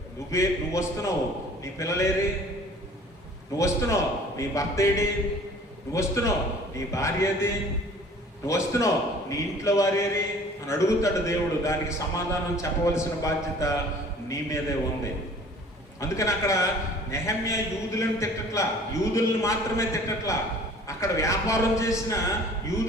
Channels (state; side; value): normal; both; correlation 0.49